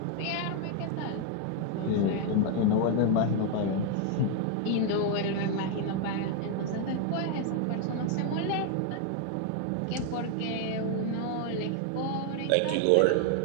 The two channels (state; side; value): different; both; correlation 0.01